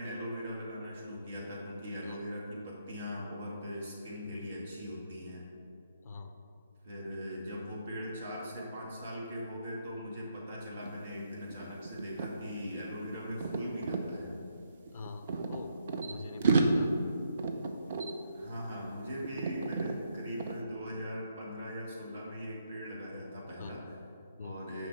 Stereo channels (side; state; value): both; inverted; correlation -0.75